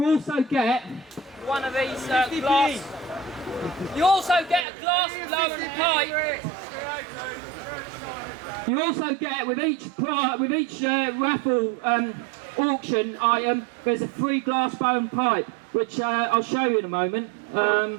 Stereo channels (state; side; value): drops out; left; at 4.7 s